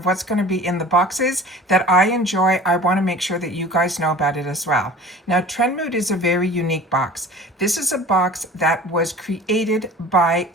what's going to be in the boxes that I enjoy, I want to make sure that you guys know about it as well. Now TrendMood is a very unique box. This is a box that was created by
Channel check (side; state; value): both; normal; correlation 0.42